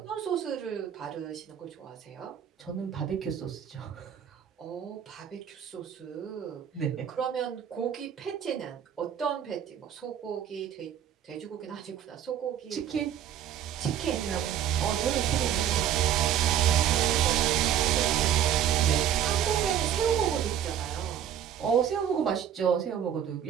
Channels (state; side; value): quieter; left; 9.7 dB